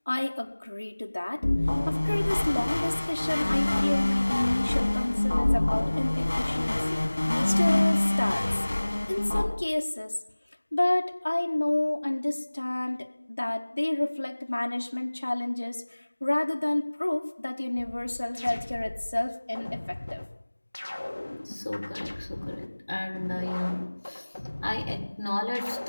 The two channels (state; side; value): inverted; both; correlation -1.00